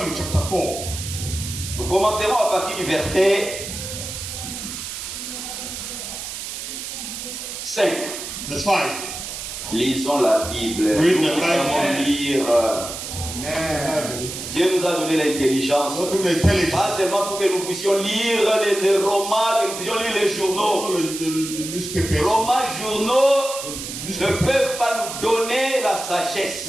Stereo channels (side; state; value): right; noise; hiss, 7 dB below the sound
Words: chapter 4. Nous commencerons à partir du verset 5. Verse 5. Lisons la Bible. Read Nous the Bible. savons lire. Dieu nous a donné l'intelligence. Not only intelligence, Pas seulement pour que nous puissions lire les romans, que nous puissions lire les journaux. all the newspapers. Romans, journaux ne peuvent pas nous donner la sagesse.